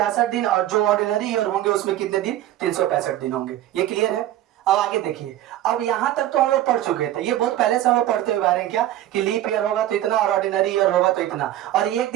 दिन और जो ऑर्डिनरी ईयर होंगे उसमें कितने दिन, 365 दिन होंगे। ये क्लियर है। अब आगे देखिए, अब यहां तक तो हम लोग पढ़ चुके थे, ये बहुत पहले से हम लोग पढ़ते हुए आ रहे हैं क्या कि लीप ईयर होगा तो इतना और ऑर्डिनरी ईयर होगा तो इतना, और ये एक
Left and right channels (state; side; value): quieter; left; 13.3 dB